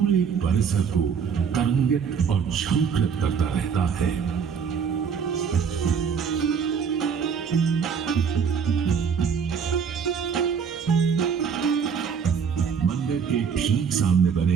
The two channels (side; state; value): left; quieter; 6.7 dB